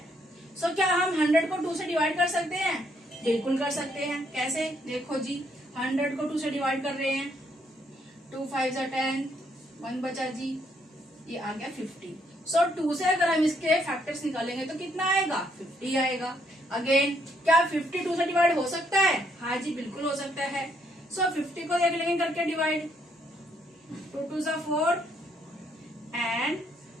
सो क्या हम 100 को 2 से डिवाइड कर सकते हैं? बिल्कुल कर सकते हैं। कैसे? देखो जी, 100 को 2 से डिवाइड कर रहे हैं। 2 5 10, 1 बचा जी, ये आ गया 50। सो 2 से अगर हम इसके फैक्टर्स निकालेंगे तो कितना आएगा? 50 आएगा। अगेन क्या 50 2 से डिवाइड हो सकता है? हाँ जी बिल्कुल हो सकता है। सो 50 को देख लेंगे करके डिवाइड। 2 2 4 एंड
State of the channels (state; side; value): normal; both; correlation 0.72